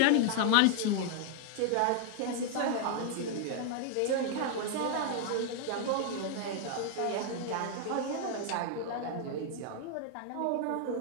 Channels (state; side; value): different; both; correlation 0.00